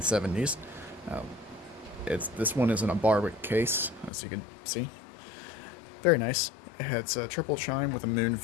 This one is in a Barwick case, as you can see. Very nice. It's a triple chime with a moon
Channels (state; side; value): drops out; right; at 4.1 s